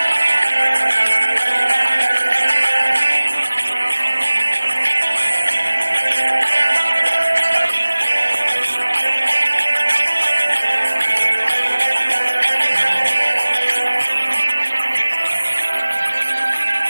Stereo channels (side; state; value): both; inverted; correlation -1.00